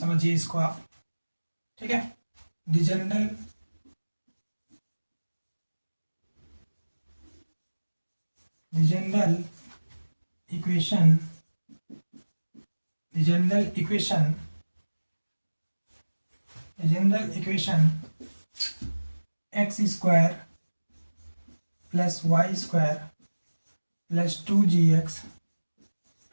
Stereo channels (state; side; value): inverted; both; correlation -1.00